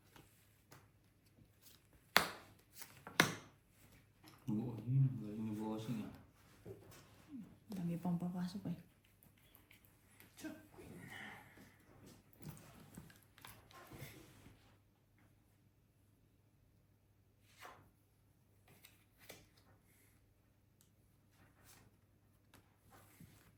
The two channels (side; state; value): both; identical; correlation 1.00